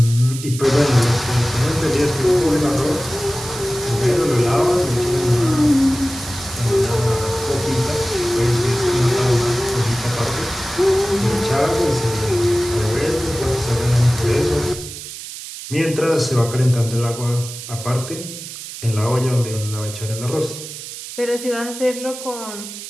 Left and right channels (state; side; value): noise; right; hiss, 11 dB below the sound